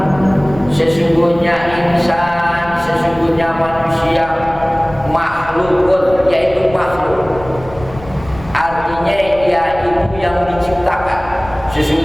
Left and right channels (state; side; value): noise; left; rumble, 17 dB below the sound